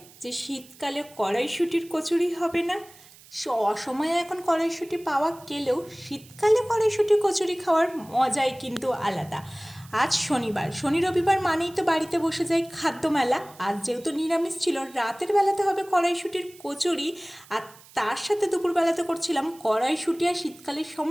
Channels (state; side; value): noise; right; hiss, 23 dB below the sound